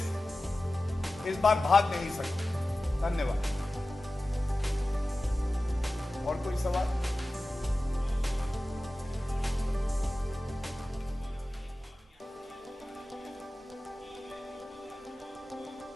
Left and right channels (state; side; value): normal; both; correlation 0.95